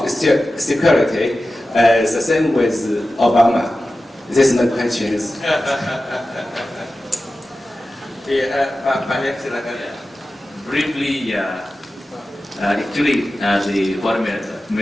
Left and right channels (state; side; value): normal; both; correlation 0.94